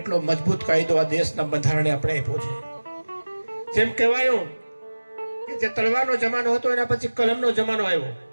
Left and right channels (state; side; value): inverted; both; correlation -1.00